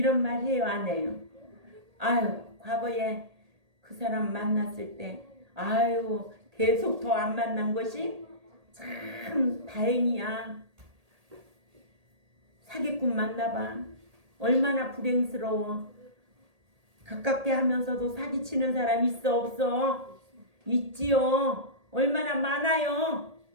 말 해요, 안 해요? 아유, 과거에 그 사람 만났을 때 아유 계속 더 안 만난 것이 참 다행이야. 사기꾼 만나봐. 얼마나 불행스러워. 가깝게 하면서도 사기치는 사람 있어 없어? 있지요. 얼마나 많아요.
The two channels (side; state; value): left; late; 1.8 ms